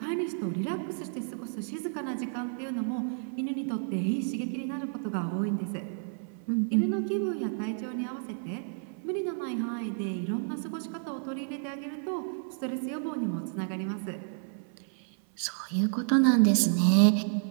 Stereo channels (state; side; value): silent; left; 57 dB below the other